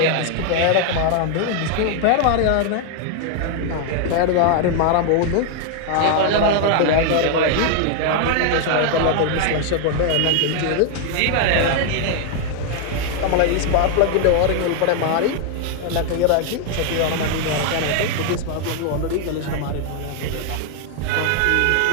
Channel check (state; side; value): different; both; correlation 0.00